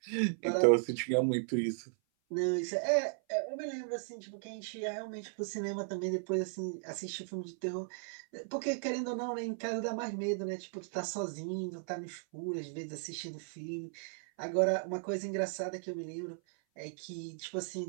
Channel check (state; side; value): silent; left; 54 dB below the other